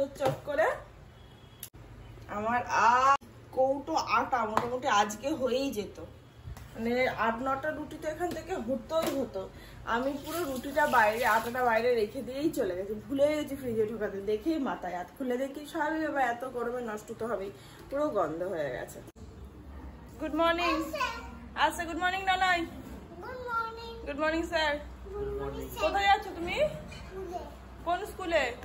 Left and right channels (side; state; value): both; identical; correlation 1.00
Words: চক্করে, আমার কৌটো আটা মোটামুটি আজকে হয়েই যেত, মানে 8-9টা রুটি তো এখান থেকে হতেই হতো। আমি পুরো রুটিটা বাইরে, আটাটা বাইরে রেখে দিয়েই চলে গেছি, ভুলে গেছি ফ্রিজে ঢোকাতে, দেখেই মাথায় হাত খুলে দেখি স্বাভাবিক ব্যাপার, এত গরমে নষ্ট তো হবেই, পুরো গন্ধ হয়ে গেছে। গুড মর্নিং আচ্ছা, গুড মর্নিং নানাই, গুড মর্নিং স্যার। কোথায় যাচ্ছ তুমি? কোন স্কুলে?